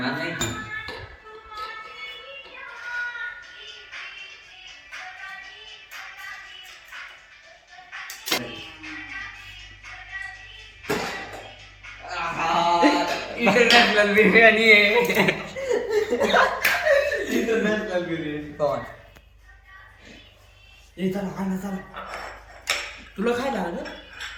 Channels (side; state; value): both; identical; correlation 1.00